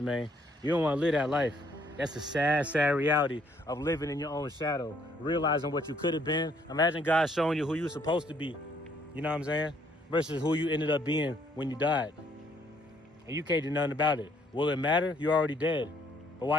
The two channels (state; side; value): normal; both; correlation 0.66